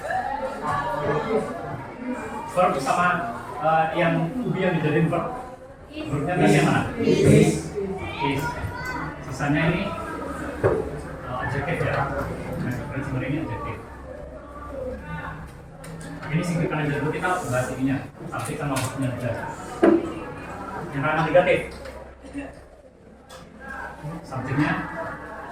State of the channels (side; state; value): both; identical; correlation 1.00